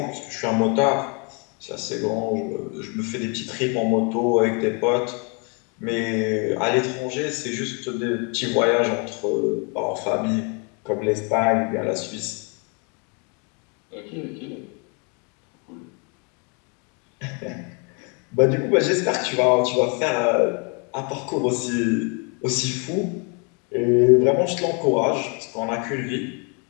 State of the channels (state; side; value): quieter; right; 35.1 dB